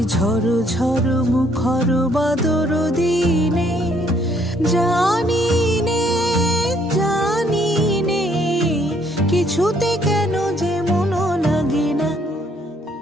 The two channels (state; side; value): normal; both; correlation 0.66